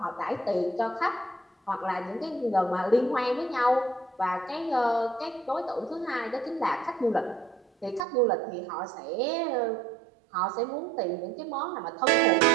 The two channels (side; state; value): left; drops out; at 8.1 s